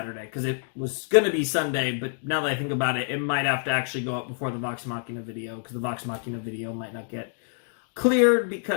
because it was going to be Sunday, but now that I think about it, it might have to actually go up before the Vox Machina video, because the Vox Machina video might not get cleared,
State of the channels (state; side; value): silent; right; digital silence